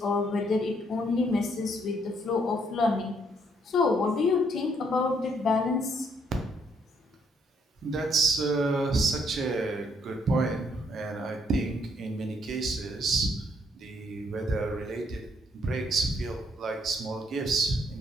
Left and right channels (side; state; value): both; normal; correlation 0.70